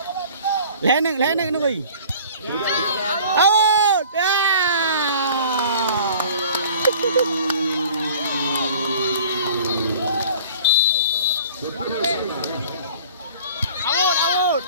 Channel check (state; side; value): inverted; both; correlation -0.46